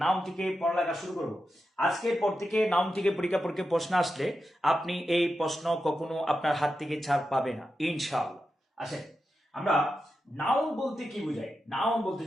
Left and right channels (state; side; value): normal; both; correlation 0.89